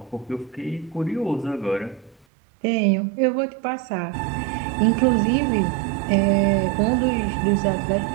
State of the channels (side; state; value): left; drops out; at 2.2 s